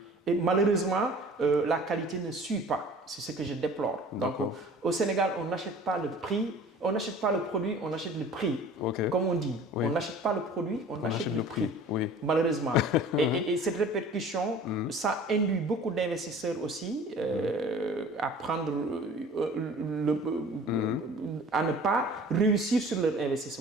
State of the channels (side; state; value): both; normal; correlation 0.45